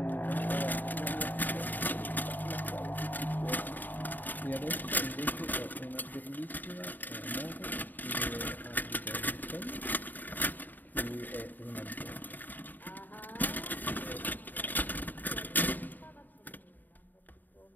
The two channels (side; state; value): right; late; 0.087 ms